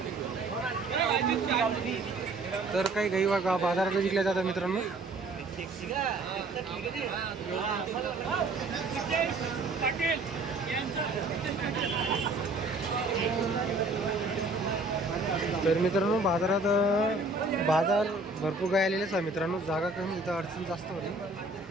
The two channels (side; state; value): left; quieter; 3.2 dB